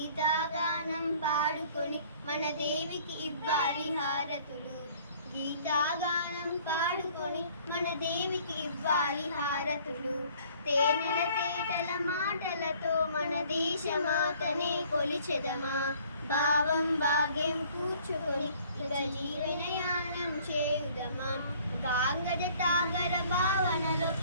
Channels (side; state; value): both; inverted; correlation -0.56